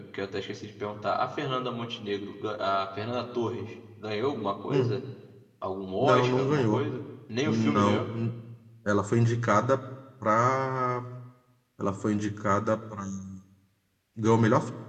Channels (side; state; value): both; identical; correlation 1.00